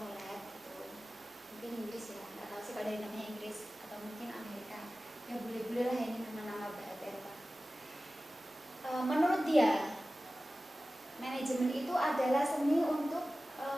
Follett itu mungkin Inggris ya, nggak tahu sih kalau dari namanya Inggris atau mungkin Amerika. Ya boleh-boleh lah ini nama-nama bahasa Eropa. Menurut dia, manajemen itu adalah seni untuk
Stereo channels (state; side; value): normal; both; correlation 0.96